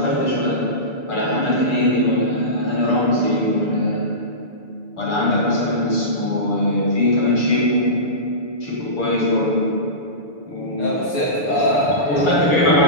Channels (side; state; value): right; late; 6.9 ms